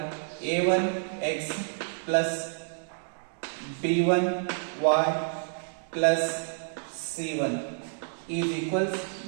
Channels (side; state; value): left; silent; digital silence